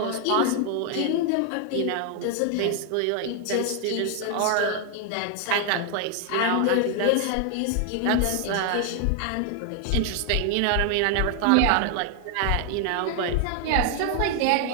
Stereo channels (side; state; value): both; different; correlation 0.00